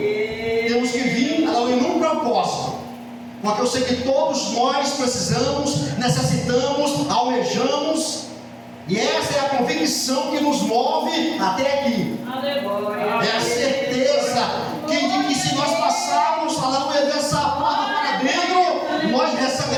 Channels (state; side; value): identical; both; correlation 1.00